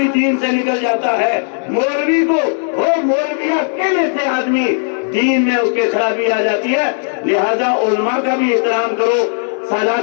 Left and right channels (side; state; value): right; silent; 63 dB below the other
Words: دین سے نکل جاتا ہے۔ مولوی کو وہ مولویہ کہنے سے آدمی دین میں اس کے خرابی آ جاتی ہے۔ لہذا علماء کا بھی احترام کرو،